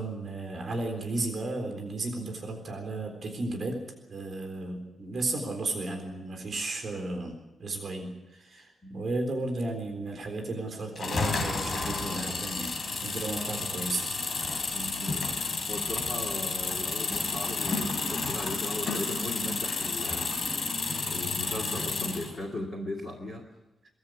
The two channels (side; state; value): both; normal; correlation 0.82